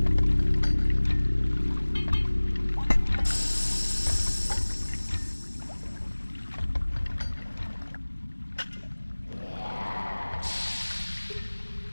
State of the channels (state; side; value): inverted; both; correlation -1.00